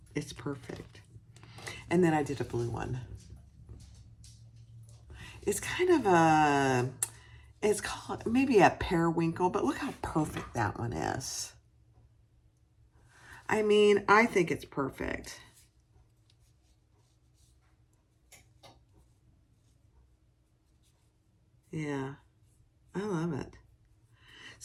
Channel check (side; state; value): both; identical; correlation 1.00